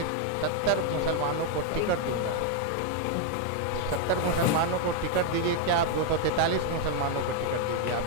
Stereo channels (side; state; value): both; different; correlation 0.00